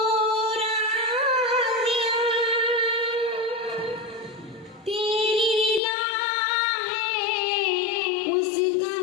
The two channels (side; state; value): right; drops out; at 5.8 s